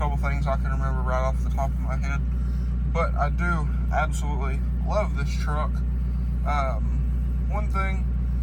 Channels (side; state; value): both; identical; correlation 1.00